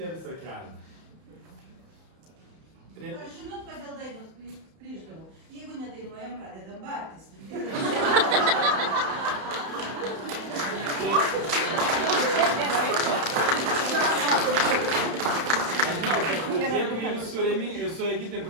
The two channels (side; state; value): left; late; 31 ms